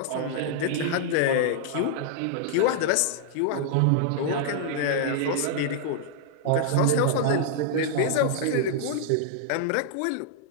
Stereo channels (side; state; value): both; different; correlation -0.01